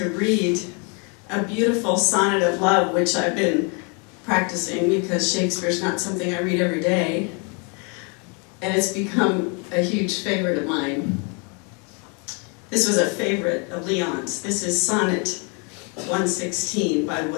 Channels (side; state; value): right; quieter; 34.4 dB